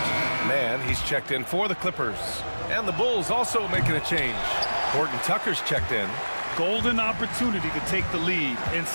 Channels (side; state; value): both; inverted; correlation -1.00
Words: Man, he's checked in for the Clippers. And the Bulls also making a change. Horton Tucker's checked in. Golden opportunity to take the lead.